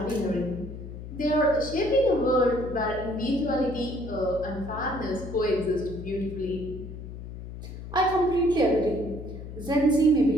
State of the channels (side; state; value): left; noise; hum, 11 dB below the sound